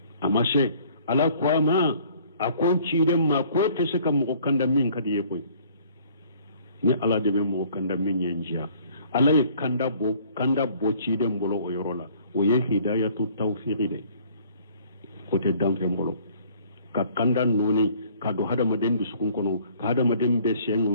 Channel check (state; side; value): inverted; both; correlation -0.57